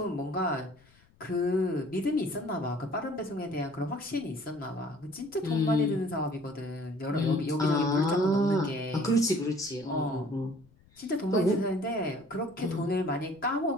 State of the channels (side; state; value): left; noise; rumble, 29 dB below the sound